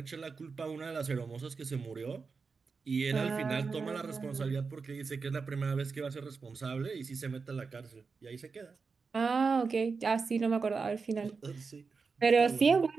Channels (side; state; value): left; quieter; 4.8 dB